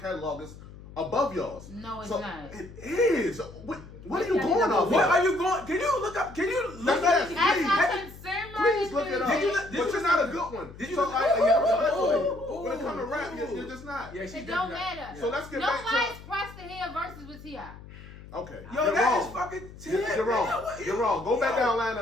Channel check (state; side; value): noise; left; hum, 17 dB below the sound